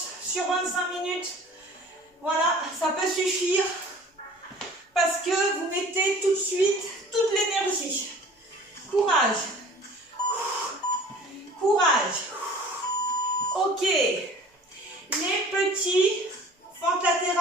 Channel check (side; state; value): both; normal; correlation 0.47